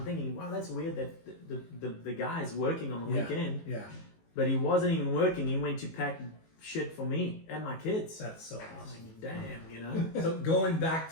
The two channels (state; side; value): late; right; 18 ms